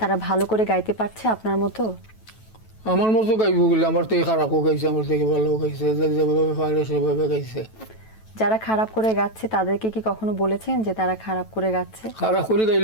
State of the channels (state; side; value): late; right; 9.1 ms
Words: ভালো করে গাইতে পারছে আপনার মতো? আমার মতো গাইব বলে, আমার থেকে খারাপও গাইছে, আমার থেকে ভালো গাইছে, যেভাবে পারে সেভাবে গাইছে। যারা খারাপ করে গাচ্ছে তাদেরকে কি কখনো বলেছেন যে তারা খারাপ করে গাচ্ছে? খারাপ করে